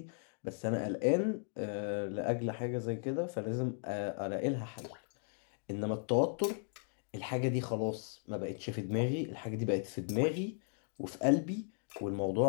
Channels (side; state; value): right; silent; 53 dB below the other